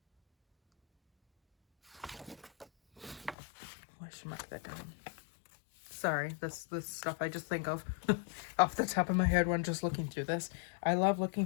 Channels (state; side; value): drops out; right; at 3.4 s